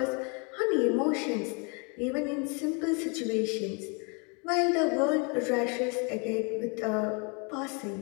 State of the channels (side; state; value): right; quieter; 34.3 dB